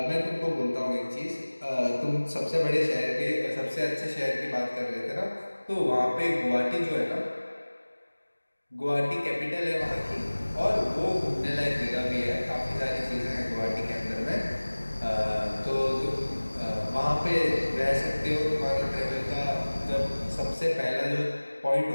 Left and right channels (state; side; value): inverted; both; correlation -1.00